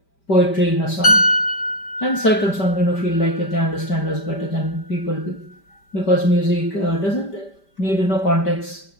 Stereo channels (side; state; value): right; late; 5.1 ms